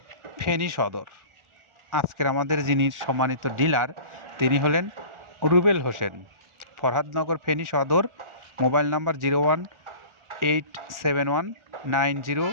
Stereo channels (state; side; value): late; left; 1.4 ms